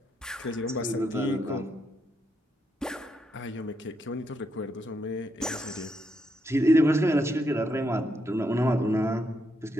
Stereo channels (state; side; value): normal; both; correlation 0.79